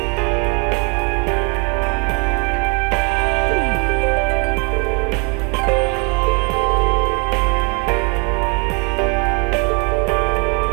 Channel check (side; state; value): left; quieter; 33.1 dB